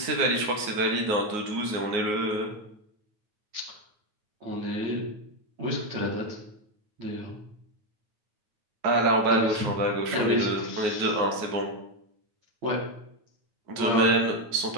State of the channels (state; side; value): late; left; 9.5 ms